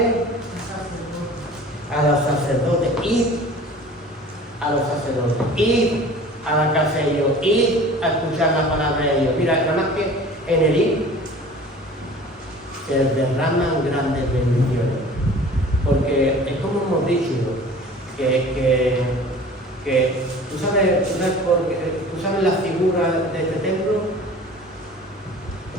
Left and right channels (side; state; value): both; normal; correlation 0.44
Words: A los sacerdotes. Id a los sacerdotes, id a la casa de ellos, id a escuchar la palabra de Dios. Mira, nada más que en el id se derraman grandes bendiciones. Porque es como hemos dicho, que ¿tú sabes la figura de este templo?